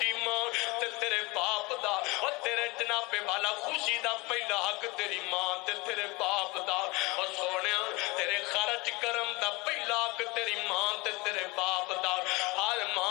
ماں تے تیرے باپ دا اور تیرے جناب والا خوشی دا پہلا حق تیری ماں تے تیرے باپ دا اور سونیا تیرے خرچ کرم دا پہلا حق تیری ماں تے تیرے باپ دا ہر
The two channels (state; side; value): quieter; right; 24.4 dB